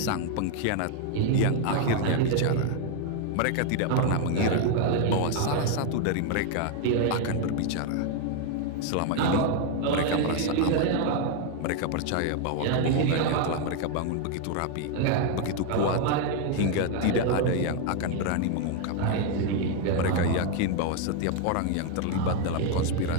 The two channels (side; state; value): both; different; correlation 0.01